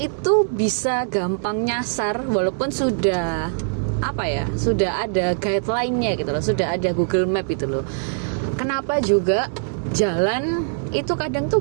bisa gampang nyasar walaupun sudah sudah ada guideline-nya gitu loh, sudah ada Google Map itu loh. Kenapa juga jalan itu kadang tuh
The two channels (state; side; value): silent; left; 64 dB below the other